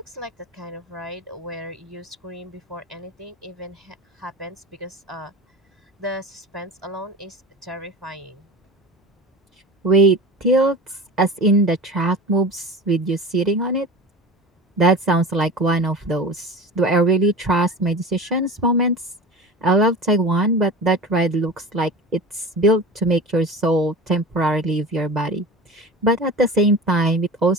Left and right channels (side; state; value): both; normal; correlation 0.33